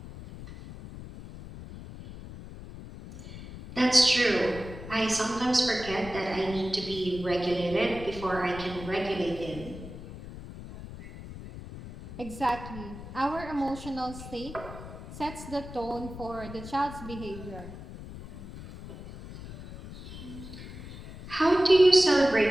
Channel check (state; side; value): noise; left; rumble, 13 dB below the sound